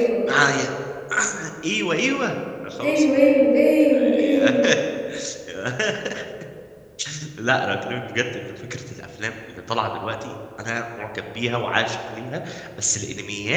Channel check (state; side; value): identical; both; correlation 1.00